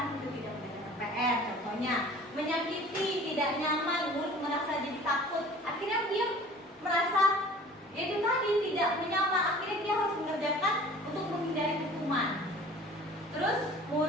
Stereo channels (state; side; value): normal; both; correlation 0.46